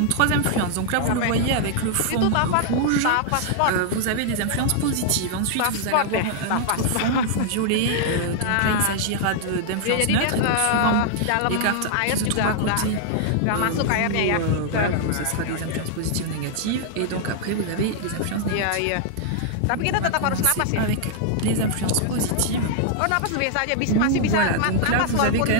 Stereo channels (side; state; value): both; different; correlation -0.01